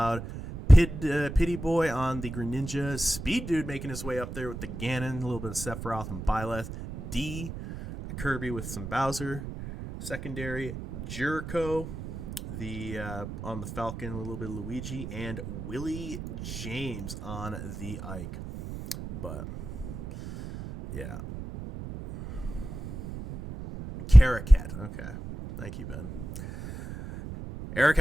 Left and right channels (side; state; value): right; noise; rumble, 9 dB below the sound